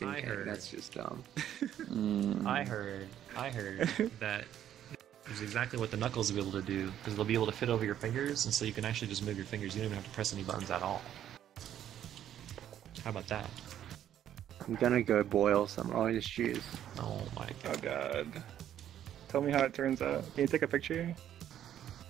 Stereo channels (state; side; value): quieter; left; 10.8 dB